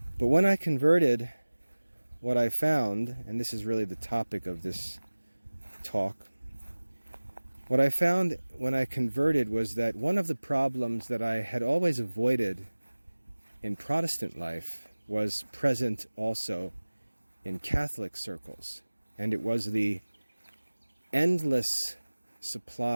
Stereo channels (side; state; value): both; inverted; correlation -1.00